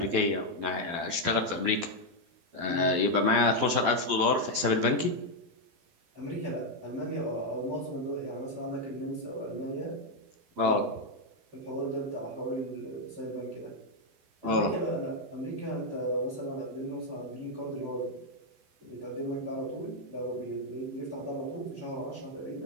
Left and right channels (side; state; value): left; late; 12 ms